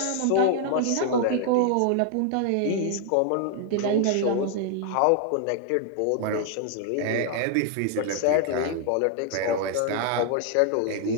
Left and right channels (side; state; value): both; different; correlation 0.00